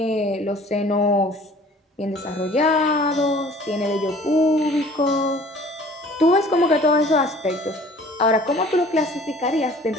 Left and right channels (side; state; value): both; normal; correlation 0.50